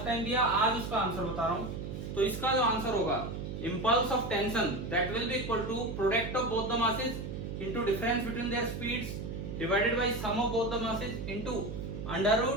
टाइम दिया, आज उसका आंसर बता रहा हूं। तो इसका जो आंसर होगा, impulse of tension that will be equal to product of both the masses into difference between their speeds divided by sum of both the masses into under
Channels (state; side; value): noise; right; hum, 6 dB below the sound